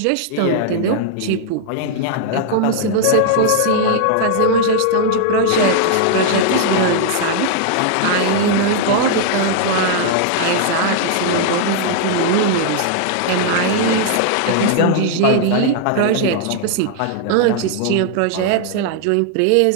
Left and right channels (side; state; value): both; different; correlation 0.00